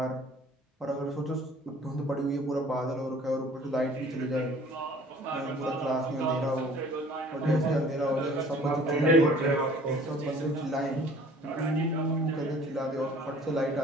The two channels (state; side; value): normal; both; correlation 0.51